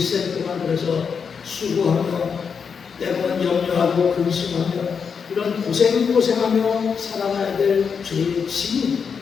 동안 그래서 수고하며 때로는 염려하고 근심하며 이런 고생하며 살아가야 될 죄의 짐이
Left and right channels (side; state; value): right; quieter; 6.2 dB